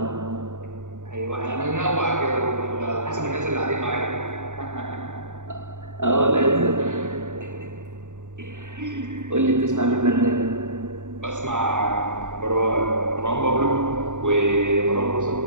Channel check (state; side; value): late; left; 0.86 ms